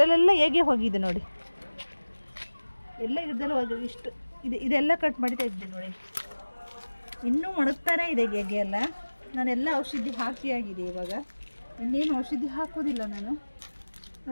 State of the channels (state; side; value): inverted; both; correlation -1.00